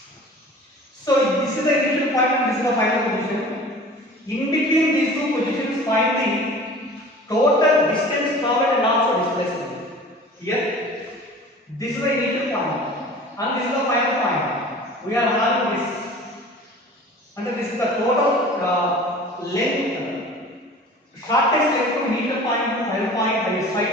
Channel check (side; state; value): both; normal; correlation 0.42